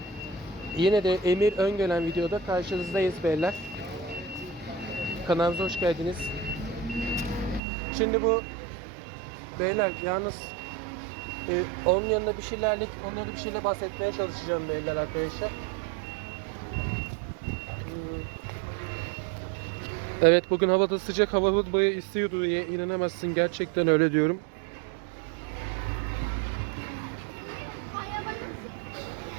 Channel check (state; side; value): drops out; left; at 7.6 s